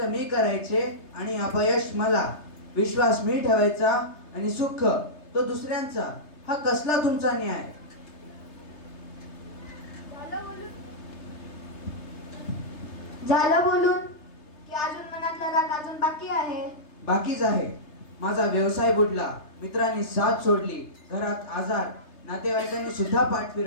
मी करायचे आणि अपयश मला, विश्वास मी ठेवायचा आणि सुख तो दुसऱ्यांचा. हा कसला तुमचा न्याय? झालं बोलून की अजून मनातला राग अजून बाकी आहे. बाकीच आहे. माझा व्यवसाय बुडला, मित्रांनी साथ सोडली, घरात आजार, नातेवाईकांनी सुद्धा पाठ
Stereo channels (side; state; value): right; late; 3.3 ms